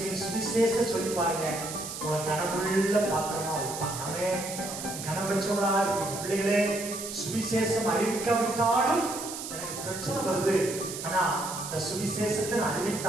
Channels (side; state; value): right; noise; hiss, 8 dB below the sound